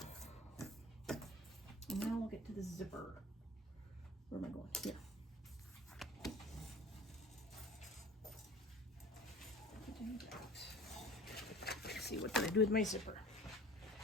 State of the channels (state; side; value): normal; both; correlation 0.44